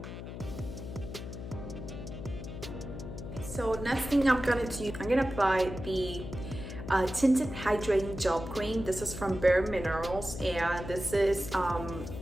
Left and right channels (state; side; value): noise; left; hum, 9 dB below the sound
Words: So next thing I'm gonna do, I'm gonna apply the tinted hydrating gel cream. This is from Bare Minerals, and this is